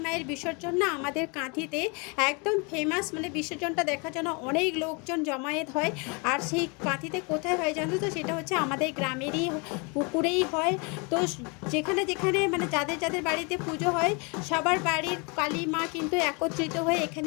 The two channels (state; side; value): quieter; right; 31.9 dB